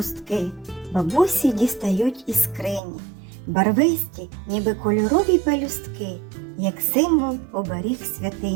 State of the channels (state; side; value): drops out; left; at 2.8 s